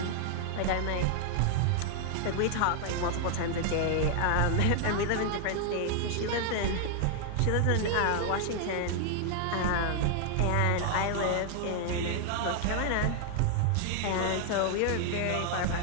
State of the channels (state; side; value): different; both; correlation 0.00